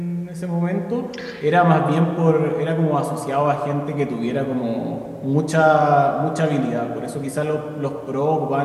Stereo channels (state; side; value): identical; both; correlation 1.00